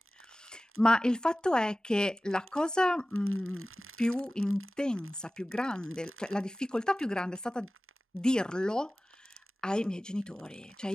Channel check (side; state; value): both; normal; correlation 0.97